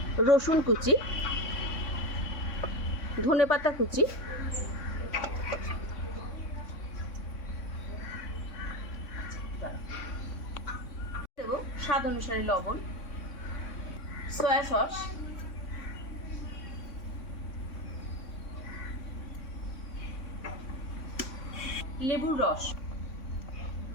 রসুন কুচি, ধনেপাতা কুচি, দেব স্বাদ অনুসারে লবণ, সয়া সস, লেবুর রস,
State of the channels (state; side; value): late; right; 3.6 ms